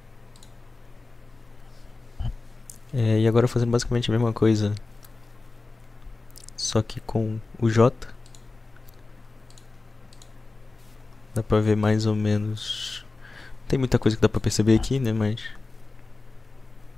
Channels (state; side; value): quieter; right; 3.6 dB